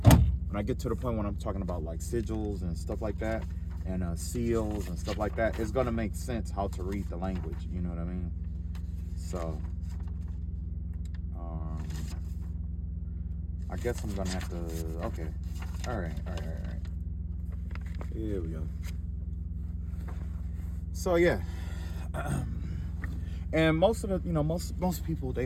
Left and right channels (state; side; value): identical; both; correlation 1.00